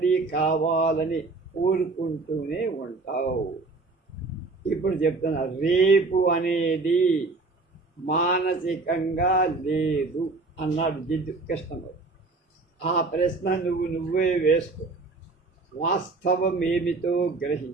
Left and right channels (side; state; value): left; quieter; 3.7 dB